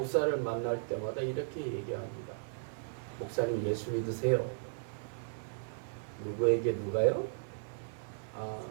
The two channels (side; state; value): left; silent; 54 dB below the other